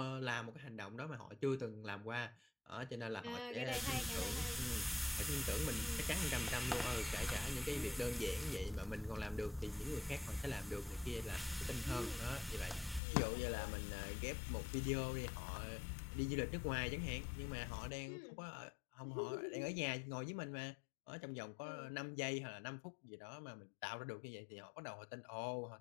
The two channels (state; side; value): drops out; right; at 13.0 s